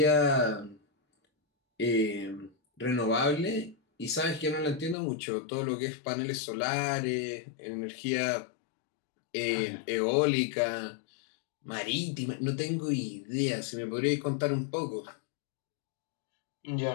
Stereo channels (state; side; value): drops out; right; at 5.0 s